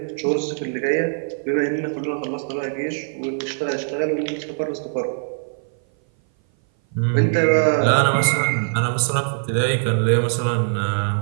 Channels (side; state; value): left; silent; 58 dB below the other